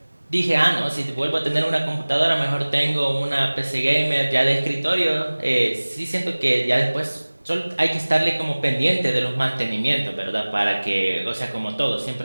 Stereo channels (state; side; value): inverted; both; correlation -1.00